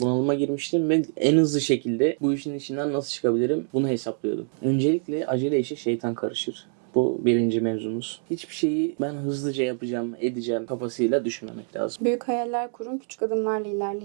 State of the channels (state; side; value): silent; left; 57 dB below the other